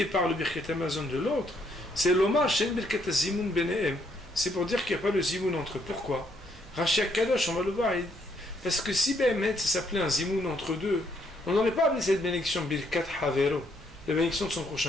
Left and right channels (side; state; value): both; normal; correlation 0.71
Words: par le Birkat Amazon de l'autre, c'est l'Omar Shen Birkat Zimoun Benehem. C'est pour dire qu'il n'y a pas le zimoun entre eux. Pourquoi? Rashi Kadosh, on va le voir. Parce que si Behemet, ça s'appelait un zimoun entre 2, on n'aurait pas appelé cette bénédiction Birkat Havero, la bénédiction de son